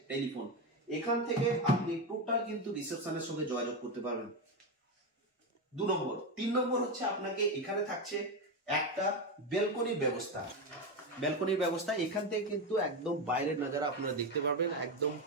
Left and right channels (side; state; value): both; normal; correlation 0.13